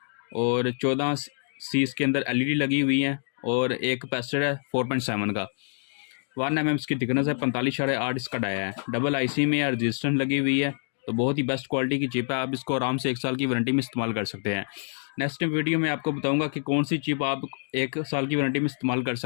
और 14 सी इसके अंदर एलईडी लगी हुई है और एक कैपेसिटर है 4.7 का। 1 mm इसकी थिकनेस है, 45.8 इसका डाया है। डबल आईसी में रजिस्टेंस लगी हुई है, तो बहुत ही बेस्ट क्वालिटी की चिप है। आप इसको आराम से 1 साल की वारंटी में इस्तेमाल कर सकते हैं। नेक्स्ट वीडियो में आपको बताऊंगा कि कौन सी चिप आप 1 साल की वारंटी में इस्तेमाल कर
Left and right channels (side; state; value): right; silent; digital silence